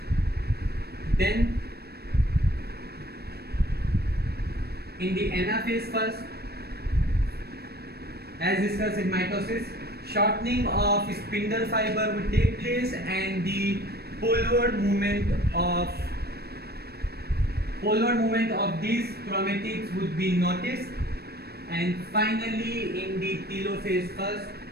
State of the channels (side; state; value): left; late; 0.47 ms